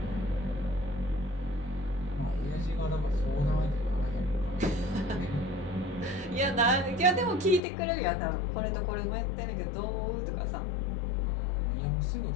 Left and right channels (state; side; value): drops out; right; at 7.6 s